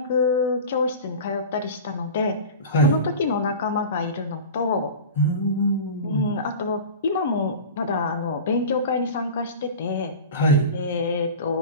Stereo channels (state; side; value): inverted; both; correlation -0.32